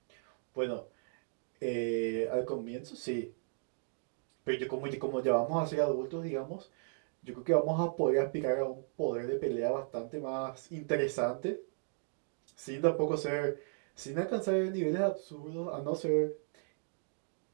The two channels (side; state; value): left; silent; digital silence